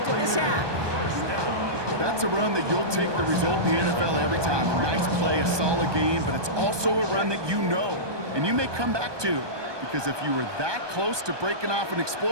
of this half. That's a run that you'll take the result in the NFL every time. A nice play, a solid game, but it's also a run that you know and you may come back to, because if you were that close to breaking off an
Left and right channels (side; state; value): left; late; 1.2 ms